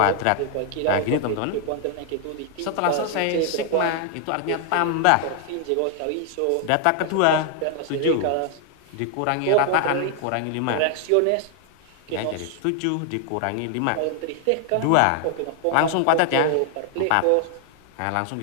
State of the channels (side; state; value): both; different; correlation 0.00